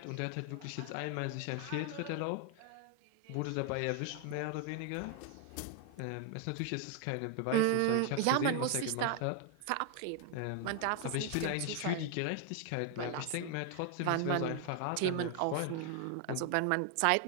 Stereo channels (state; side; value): different; both; correlation 0.00